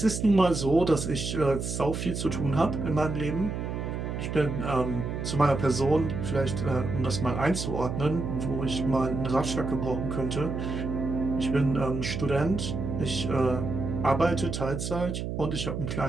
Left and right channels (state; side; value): noise; right; hum, 4 dB below the sound